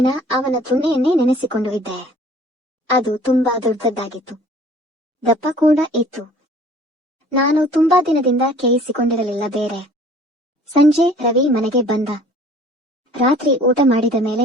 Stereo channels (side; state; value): both; normal; correlation 0.52